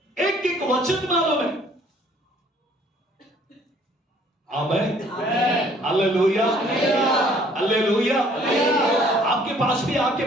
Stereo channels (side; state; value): both; normal; correlation 0.59